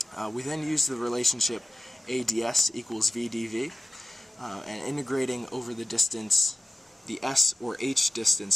We then use the relationship a ds equals v dv, and integrating over the distance, the s or h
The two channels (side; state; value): both; normal; correlation 0.94